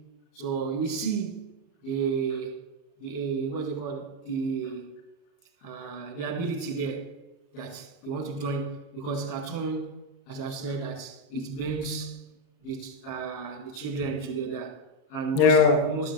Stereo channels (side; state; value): right; late; 34 ms